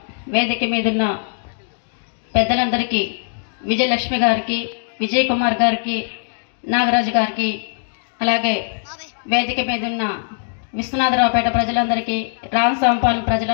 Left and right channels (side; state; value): right; silent; digital silence